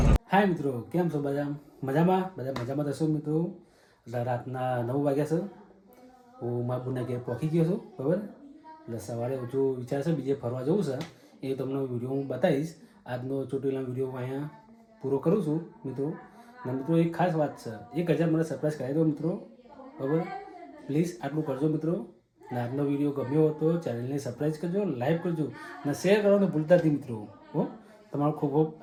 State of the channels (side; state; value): both; identical; correlation 1.00